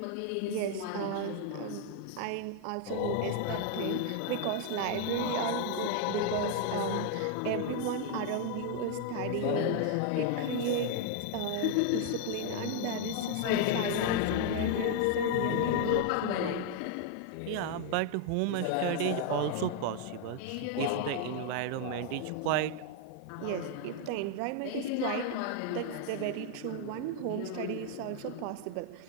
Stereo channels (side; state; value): both; different; correlation 0.00